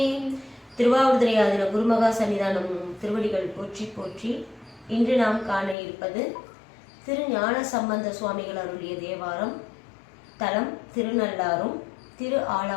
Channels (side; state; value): right; drops out; at 5.8 s